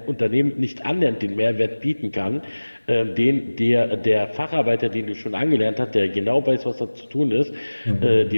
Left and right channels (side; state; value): both; inverted; correlation -1.00